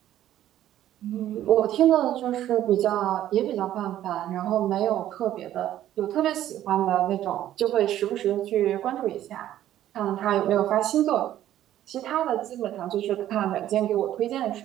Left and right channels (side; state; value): left; quieter; 12.5 dB